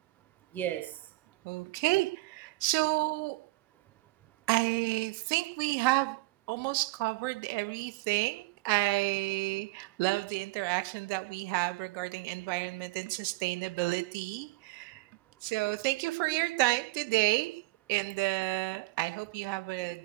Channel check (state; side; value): quieter; left; 22.8 dB